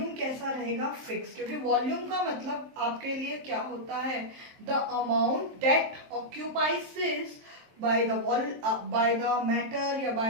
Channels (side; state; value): left; late; 23 ms